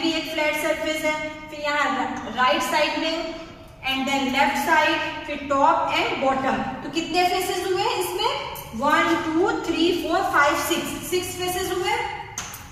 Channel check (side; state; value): both; identical; correlation 1.00